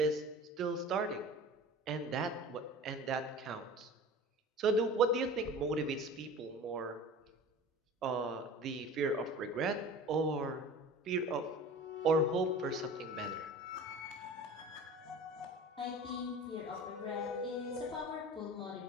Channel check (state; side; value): normal; both; correlation 0.39